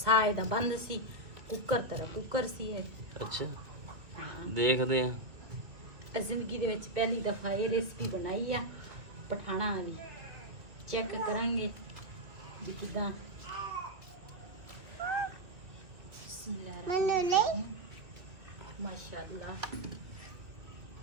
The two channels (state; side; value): late; left; 2.0 ms